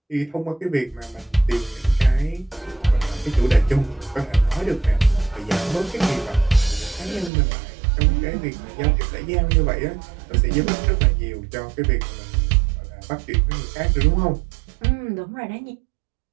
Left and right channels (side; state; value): left; drops out; at 7.3 s